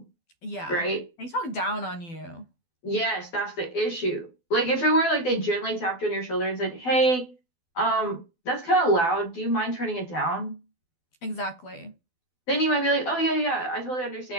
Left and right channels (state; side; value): late; right; 12 ms